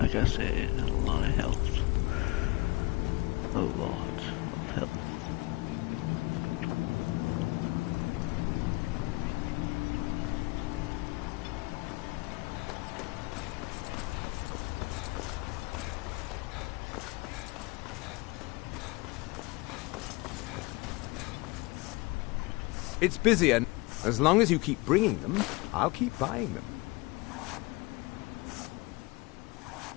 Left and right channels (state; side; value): quieter; right; 24.1 dB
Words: I said, a lot of health. A lot of health. It's busy, and as long as you keep bringing them, I'll keep buying them.